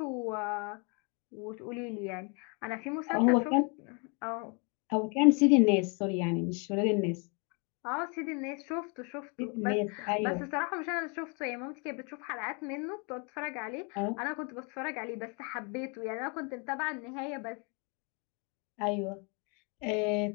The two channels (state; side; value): quieter; right; 34.3 dB